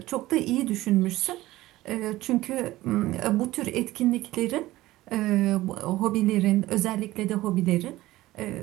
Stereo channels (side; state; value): left; quieter; 17.1 dB